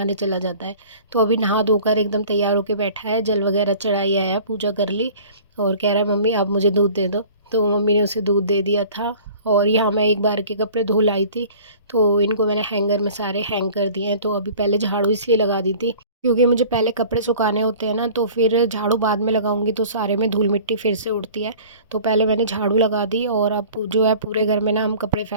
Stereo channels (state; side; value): inverted; both; correlation -0.46